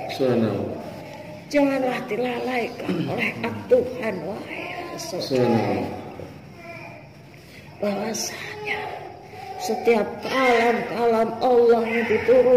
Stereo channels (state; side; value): identical; both; correlation 1.00